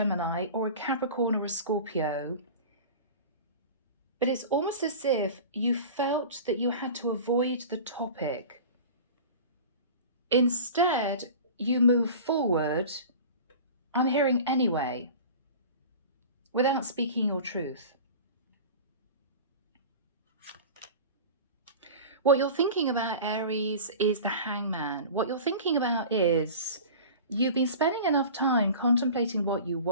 or a Capricorn or a Scorpio. But it's almost as if you felt that you had to avoid the topic. Instead, you move forward, I'm hearing anyway, without speaking your truth. What you're thinking about, Aries, is the Hangman. What you're thinking about is you've been spending enough time contemplating what you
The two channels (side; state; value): both; inverted; correlation -0.36